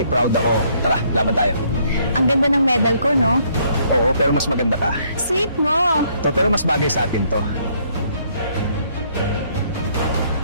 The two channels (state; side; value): inverted; both; correlation -0.67